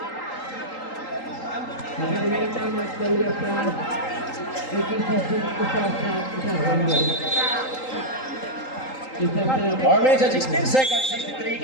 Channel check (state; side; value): late; right; 3.8 ms